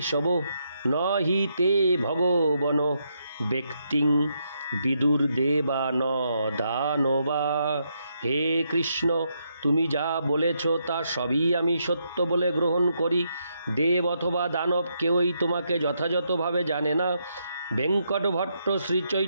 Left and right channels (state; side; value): inverted; both; correlation -0.79